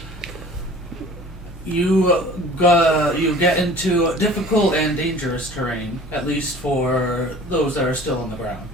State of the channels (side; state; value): both; normal; correlation 0.46